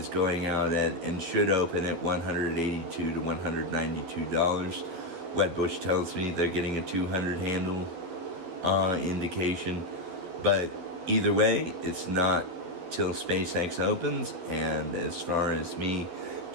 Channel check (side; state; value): left; late; 12 ms